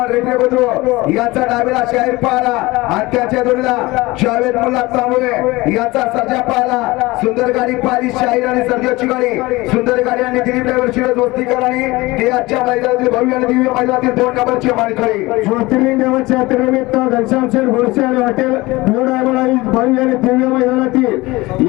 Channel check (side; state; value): right; quieter; 21.1 dB